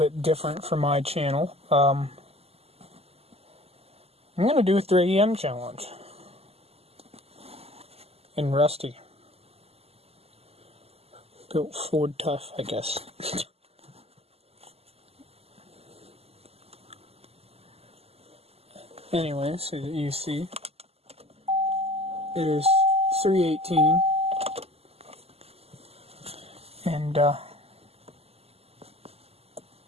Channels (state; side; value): late; left; 0.29 ms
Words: different from my channel. I'm gonna do a 3AM challenge. In Rusty. Built Ford Tough, I guess. Anyway, so that you see, it is 3:18, and so